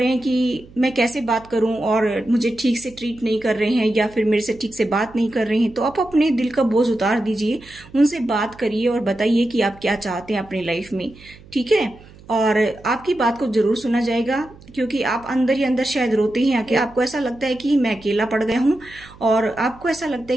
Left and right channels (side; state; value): right; noise; hum, 22 dB below the sound